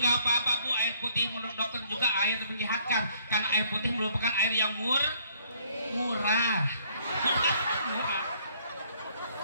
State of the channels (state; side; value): inverted; both; correlation -0.64